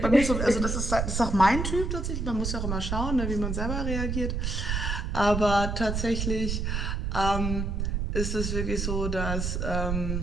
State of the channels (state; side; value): noise; right; rumble, 1 dB below the sound